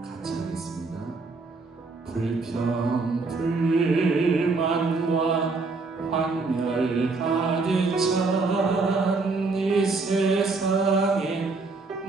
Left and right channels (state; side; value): quieter; left; 3.9 dB